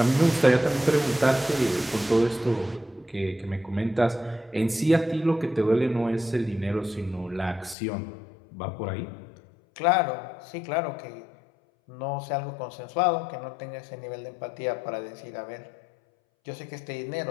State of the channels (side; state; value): right; drops out; at 7.8 s